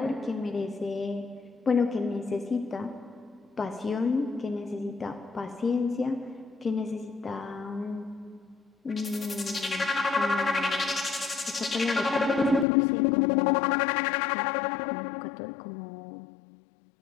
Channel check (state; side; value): drops out; right; at 12.7 s